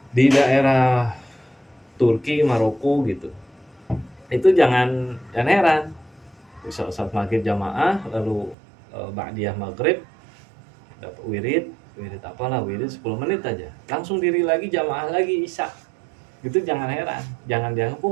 di daerah Turki, Maroko gitu, itu jangan heran. Saat maghrib jamaah lalu ba'diyah maghrib dapat wirid 10 menit aja langsung diri lagi jamaah lagi isya. Gitu jangan heran, jangan dianggap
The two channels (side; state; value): left; drops out; at 8.6 s